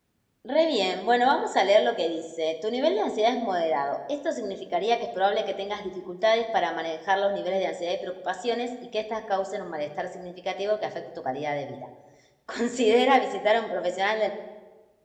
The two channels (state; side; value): identical; both; correlation 1.00